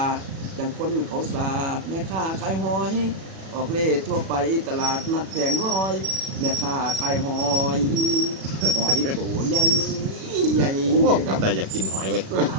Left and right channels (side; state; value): left; late; 37 ms